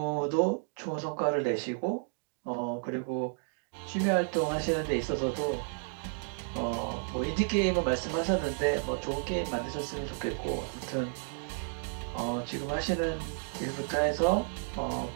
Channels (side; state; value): left; silent; 56 dB below the other